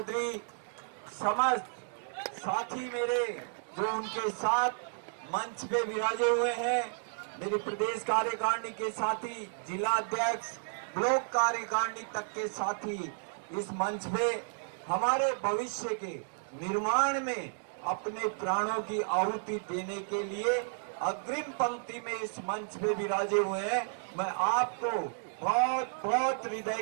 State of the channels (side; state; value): left; silent; digital silence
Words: समस्त साथी मेरे जो उनके साथ मंच पे विराजे हुए हैं, मेरी प्रदेश कार्यकारिणी के साथी, जिला अध्यक्ष, ब्लॉक कार्यकारिणी तक के साथी, इस मंच पे हमारे भविष्य के निर्माण में अपने प्राणों की आहुति देने के लिए अग्रिम पंक्ति में इस मंच पे विराजे हुए हैं। मैं आपको बहुत बहुत हृदय